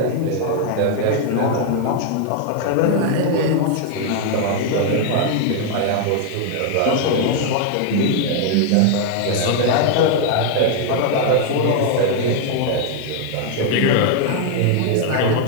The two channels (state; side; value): different; both; correlation 0.00